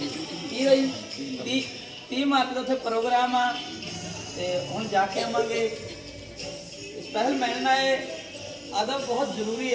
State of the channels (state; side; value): identical; both; correlation 1.00